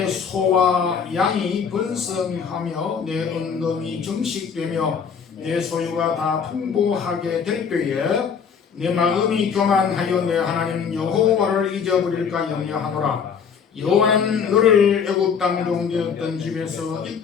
소와 양이 번성하며 내 은금이 정식되며 내 소유가 다 풍부하게 될 때에 내 마음이 교만하여 내 하나님 여호와를 잊어버릴까 염려하노라. 여호와는 너를 애굽 땅 종되었던 집에서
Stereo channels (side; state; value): right; quieter; 6.6 dB